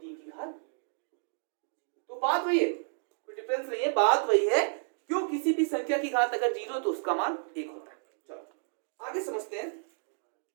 की घात। तो बात वही है, कोई डिफरेंस नहीं है, बात वही है। क्यों, किसी भी संख्या की घात अगर 0 तो उसका मान 1 होता है। चलो आगे समझते हैं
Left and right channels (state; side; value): silent; left; digital silence